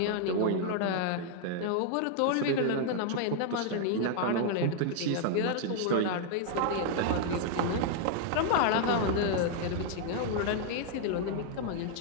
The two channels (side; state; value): both; different; correlation 0.00